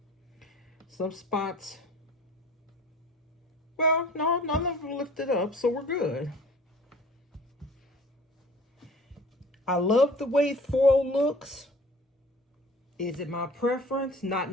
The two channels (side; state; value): both; normal; correlation 0.47